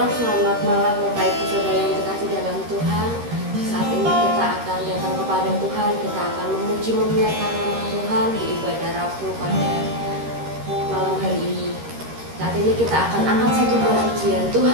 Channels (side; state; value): left; late; 13 ms